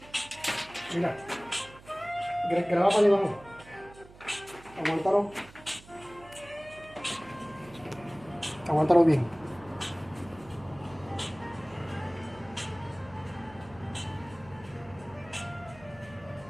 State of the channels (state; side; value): noise; right; hum, 21 dB below the sound